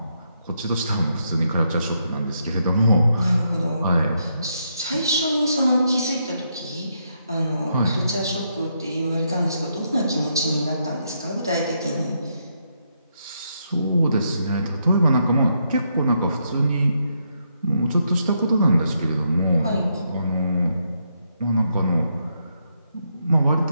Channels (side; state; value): both; inverted; correlation -0.78